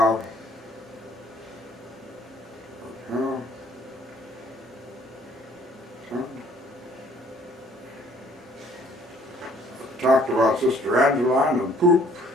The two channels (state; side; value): normal; both; correlation 0.59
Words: uh, Talked about Sister Angeline and poop.